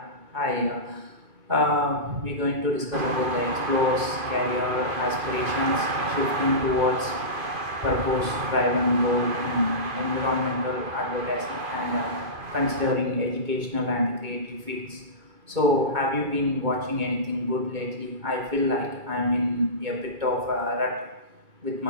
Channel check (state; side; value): late; left; 2.2 ms